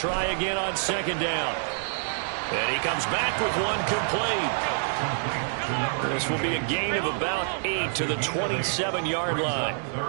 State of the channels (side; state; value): left; silent; digital silence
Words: again on second down. And he comes back with one complete. This will be a gain of about 8 to the 27-yard line.